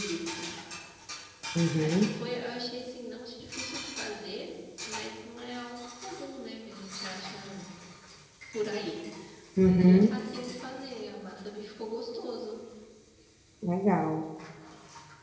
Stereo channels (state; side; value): identical; both; correlation 1.00